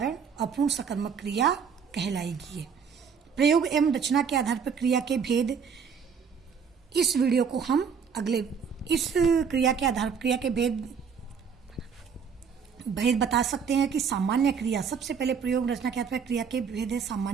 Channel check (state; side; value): quieter; left; 6.5 dB